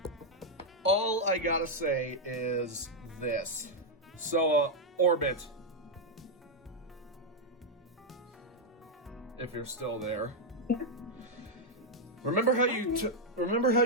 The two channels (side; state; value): both; normal; correlation -0.01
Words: All I gotta say is this. So, Orbit, if you're still there. Yeah. Remember how